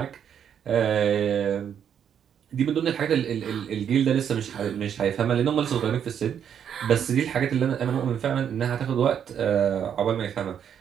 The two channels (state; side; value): quieter; left; 8.5 dB